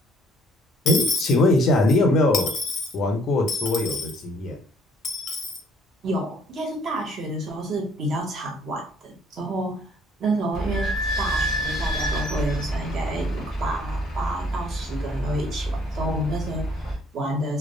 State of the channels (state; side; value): normal; both; correlation 0.62